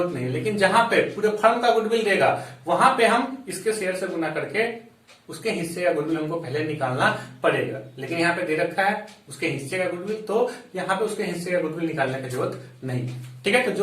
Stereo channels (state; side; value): identical; both; correlation 1.00